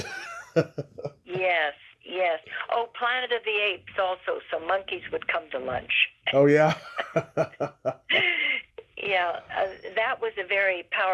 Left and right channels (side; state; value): both; identical; correlation 1.00